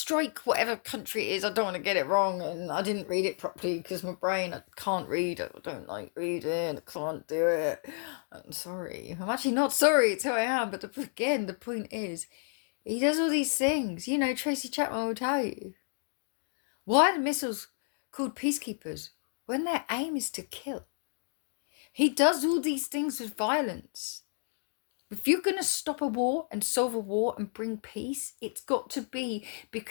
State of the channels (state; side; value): silent; right; 57 dB below the other